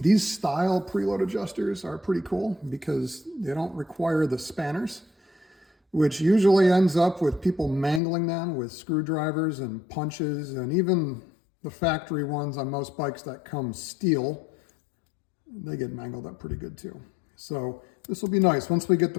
style preload adjusters are pretty cool because they don't require the spanners, which usually ends up with people mangling them with screwdrivers and punches, and even the factory ones on most bikes that come steel, they get mangled up pretty good too. So this will be nice. Once we get the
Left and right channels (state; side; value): drops out; right; at 8.0 s